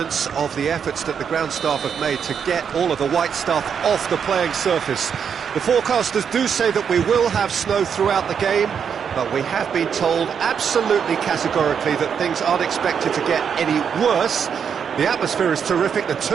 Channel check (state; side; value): quieter; left; 7.2 dB